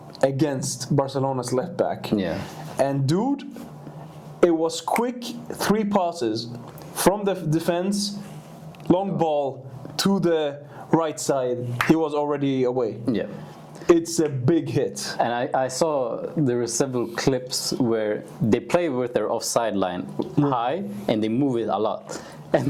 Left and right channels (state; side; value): identical; both; correlation 1.00